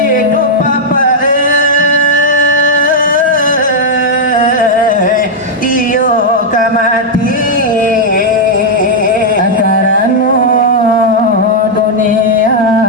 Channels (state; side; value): normal; both; correlation -0.03